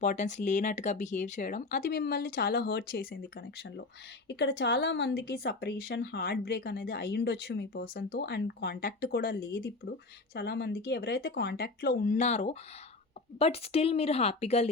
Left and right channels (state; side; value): quieter; right; 3.4 dB